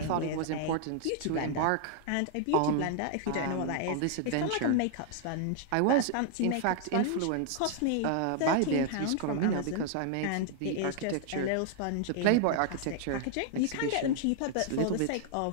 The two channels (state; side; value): different; both; correlation 0.00